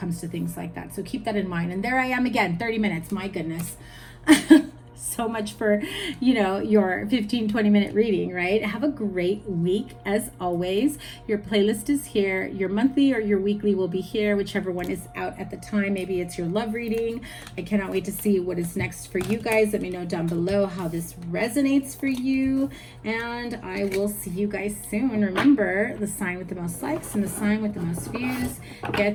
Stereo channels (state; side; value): identical; both; correlation 1.00